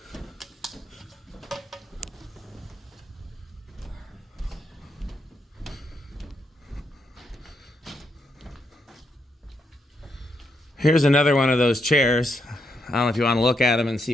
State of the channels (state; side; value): normal; both; correlation 0.79